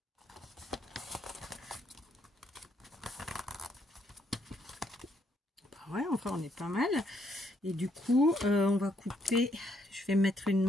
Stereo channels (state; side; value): normal; both; correlation 0.72